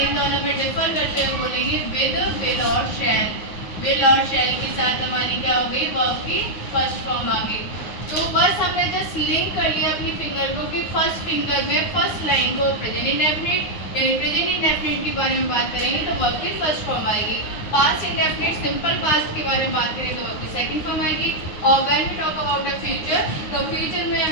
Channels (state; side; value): late; right; 9.5 ms